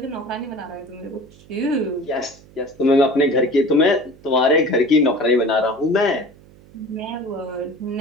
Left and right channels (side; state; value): right; noise; hum, 24 dB below the sound